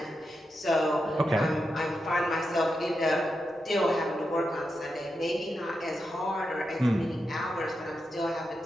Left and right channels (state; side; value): normal; both; correlation 0.87